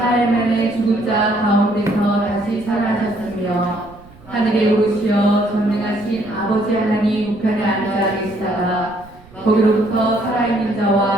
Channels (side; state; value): right; noise; rumble, 23 dB below the sound